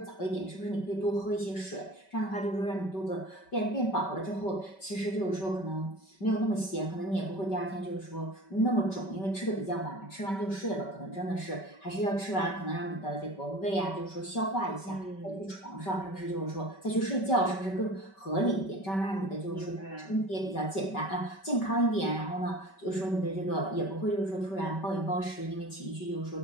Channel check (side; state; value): right; late; 5.2 ms